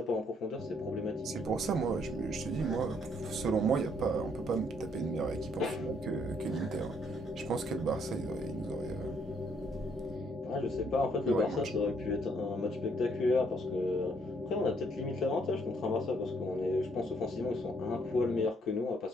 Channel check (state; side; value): normal; both; correlation 0.68